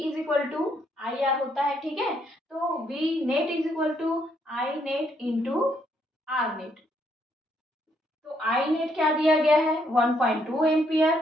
equal to I R होता है। ठीक है, तो V net is equal to I net into R net. तो आई नेट क्या दिया गया है 1.2 एम्पियर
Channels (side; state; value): both; normal; correlation 0.73